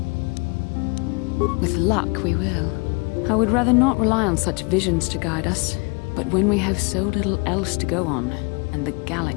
With luck, we will. I would rather not rely on such visions to guide us, but when we have so little else to go on, and the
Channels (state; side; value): quieter; right; 30.4 dB